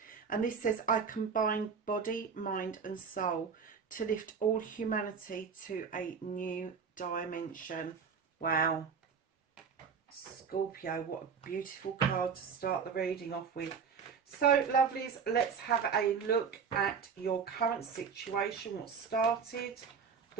And this says, I combine body, mind and soul to lift all humanity to a new dimension. Wow. Scorpio, what a beautiful card to start the reading off with. So, lovelies, let's have a look at your current situation. What started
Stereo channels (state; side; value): quieter; left; 6.1 dB